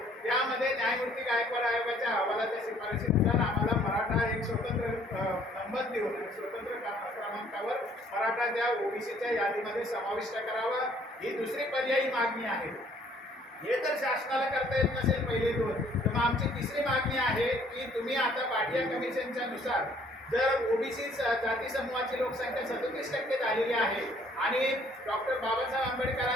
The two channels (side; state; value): both; normal; correlation 0.61